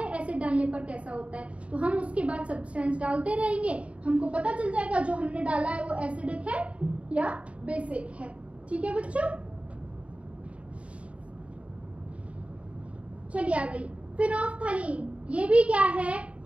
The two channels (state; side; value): late; left; 0.064 ms